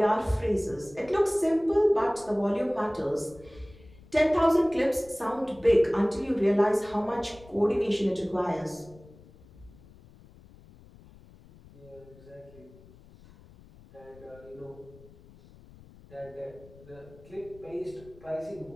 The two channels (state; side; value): noise; left; rumble, 23 dB below the sound